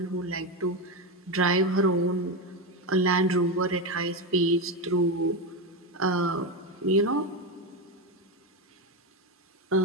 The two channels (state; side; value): normal; both; correlation 0.13